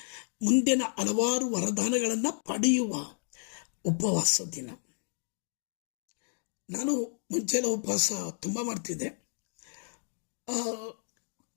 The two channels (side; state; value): right; silent; digital silence